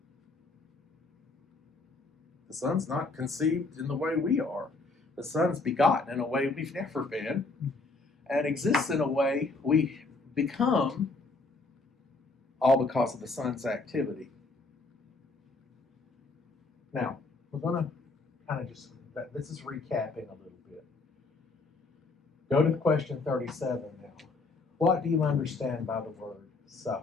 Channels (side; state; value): right; quieter; 3.5 dB